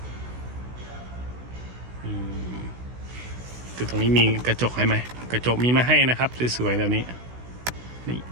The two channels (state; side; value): late; left; 16 ms